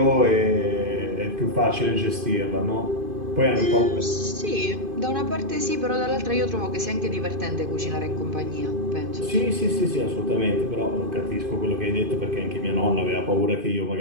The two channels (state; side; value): late; left; 2.5 ms